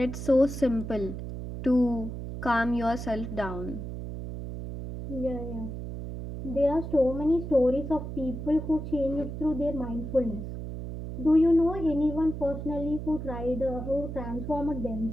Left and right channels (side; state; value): right; noise; hum, 7 dB below the sound